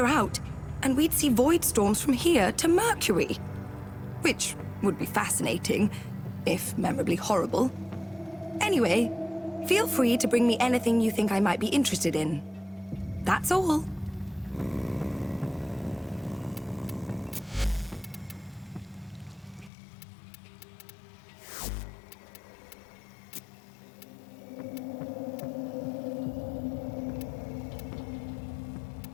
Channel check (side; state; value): right; drops out; at 19.7 s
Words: out, and we'd see void storms from here to Mercury. Which would be fascinating, if memorably horrible. Anyway, feel free to bring me anything you think I might be interested in. That's all.